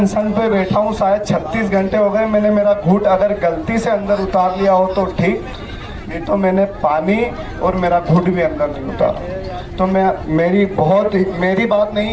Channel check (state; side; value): identical; both; correlation 1.00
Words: पे बैठा हूँ शायद 36 घंटे हो गए। मैंने मेरा घूंट अगर गलती से अंदर उतार लिया हो तो ठीक, नहीं तो मैंने पानी और मेरा घूंट भी अंदर नहीं उतारा। तो मेरी बात